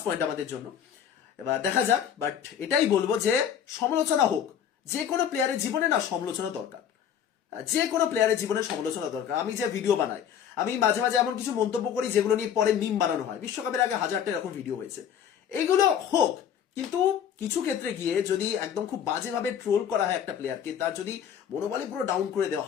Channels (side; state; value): right; quieter; 8.8 dB